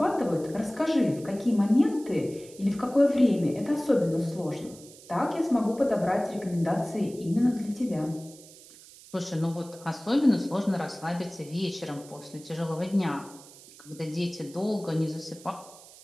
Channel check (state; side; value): noise; right; hiss, 21 dB below the sound